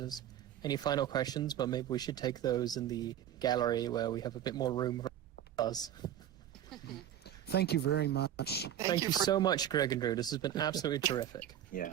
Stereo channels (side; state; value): left; quieter; 11.0 dB